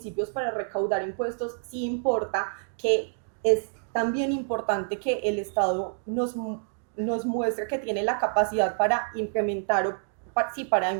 para recaudar impuestos sí importa, que es también importante que el Estado nos muestre que tiene la capacidad para implementar para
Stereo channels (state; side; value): silent; left; digital silence